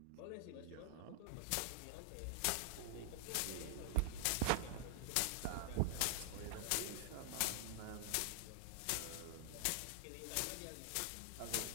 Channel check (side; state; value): both; different; correlation 0.00